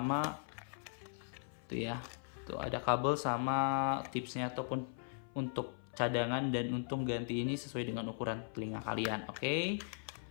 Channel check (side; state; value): right; silent; 52 dB below the other